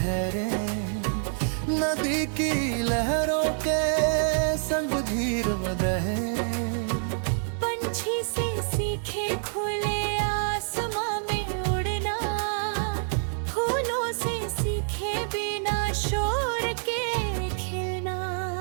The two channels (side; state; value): left; silent; digital silence